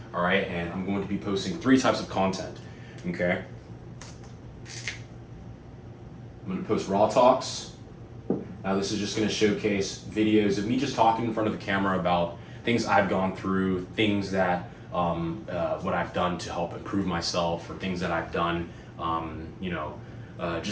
All right, and I'm going to be posting 3 types of content, okay? I'm going to post raw talks. Now this is just going to showcase videos of me just talking in front of the camera about things I've gone through, things that, what I've done to help improve myself, or things that I've done,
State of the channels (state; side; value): identical; both; correlation 1.00